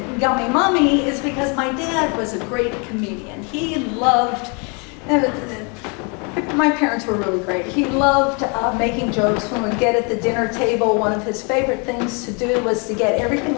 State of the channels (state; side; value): quieter; right; 34.0 dB